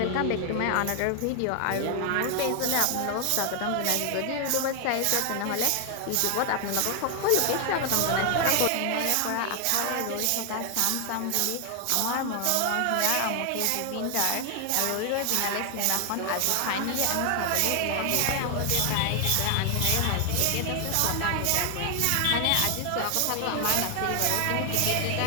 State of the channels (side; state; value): both; different; correlation 0.00